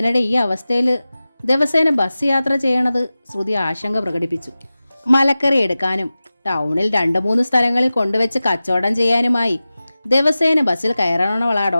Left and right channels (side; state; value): both; inverted; correlation -0.96